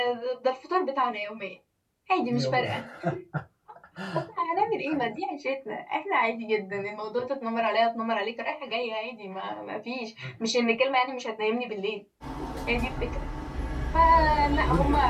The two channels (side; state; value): both; identical; correlation 1.00